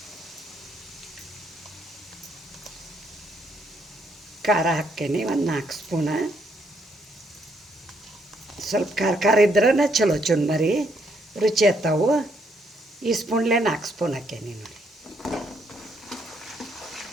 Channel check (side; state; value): both; normal; correlation 0.72